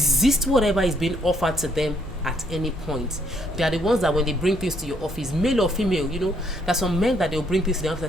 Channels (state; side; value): normal; both; correlation 0.70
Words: whatever is being offered to them at any point. They are the ones that when they bring things to your office, male or female, there's some men that they'll bring things to the office